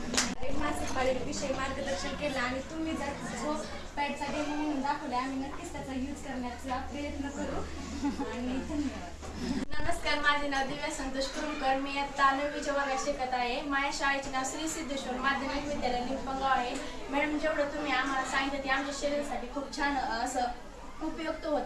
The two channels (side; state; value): both; identical; correlation 1.00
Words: मासिक पाळीविषयी मार्गदर्शन केलं आणि तुम्ही जर जो पॅडचा डेमो म्हणून दाखवला आम्ही नक्कीच त्याचा यूज करण्याचा प्रयत्न करू. आणि धन्यवाद. नमस्कार, माझे नाव दिव्या संतोष कुरुमकर. मी आता 9वीच्या वर्गात शिकत आहे. माझ्या शाळेचे नाव श्री सिद्धेश्वर माध्यमिक विद्यालय निंपगाव आहे. मॅडम जेवढं तुम्ही आम्हाला सांगितलं ते आमच्या शरीरासाठी खूप छान असं उपयुक्त